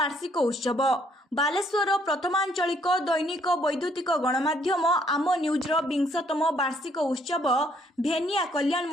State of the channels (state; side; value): normal; both; correlation 0.66